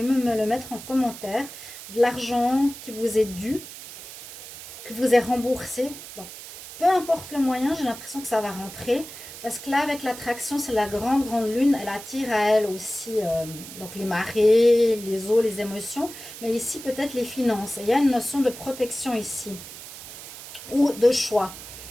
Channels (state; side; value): noise; right; hiss, 13 dB below the sound